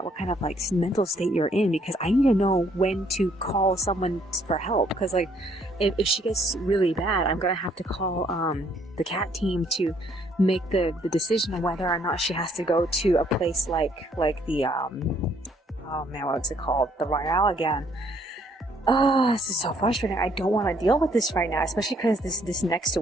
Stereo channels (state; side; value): normal; both; correlation 0.66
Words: what kind of like mental state you're in, because I need to know when to call someone for help, because like if she gets really bad, I'm gonna have to call the cat team to make the decision on whether or not she has to go to a place like the oh man, what's it called, the Royale again. Oh, this is so frustrating. I don't want to deal with this right now, especially because this next